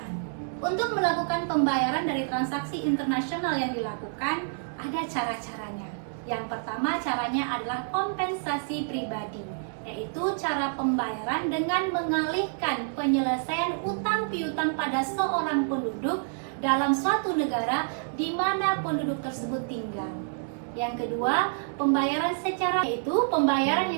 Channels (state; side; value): silent; left; digital silence